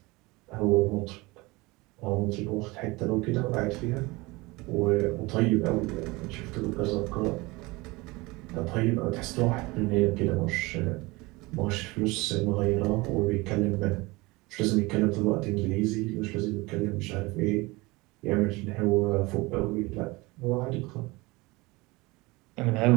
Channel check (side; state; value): left; quieter; 23.2 dB